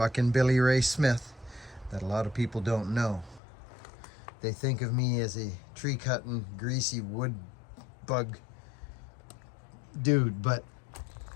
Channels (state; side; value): drops out; right; at 3.4 s